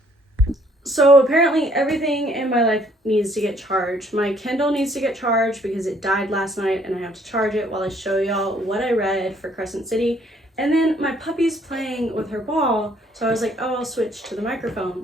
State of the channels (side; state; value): both; normal; correlation 0.63